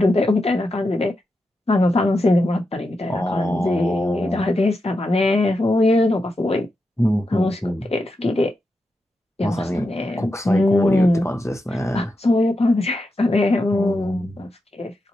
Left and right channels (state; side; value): normal; both; correlation 0.87